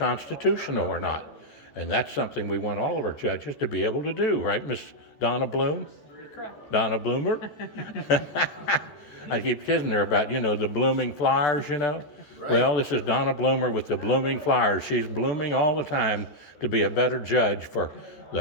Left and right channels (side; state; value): right; late; 14 ms